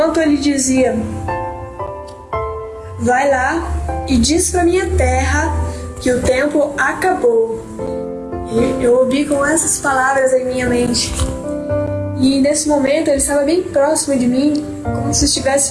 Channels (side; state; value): both; identical; correlation 1.00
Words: ele dizia: vai lá e diz para minha terra que o tempo acabou. Eu ouvi com essas palavras em minha mente. E nesse momento ele estava bem próximo de mim, como se